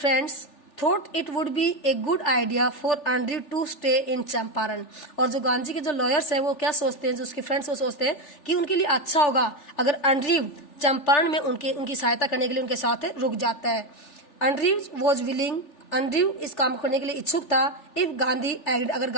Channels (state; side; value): late; right; 3.4 ms